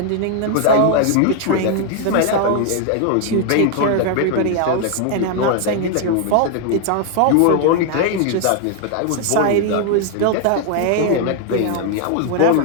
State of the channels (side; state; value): both; different; correlation 0.00